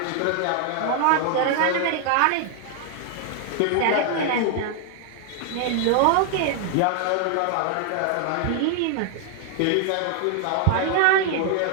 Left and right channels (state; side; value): different; both; correlation 0.00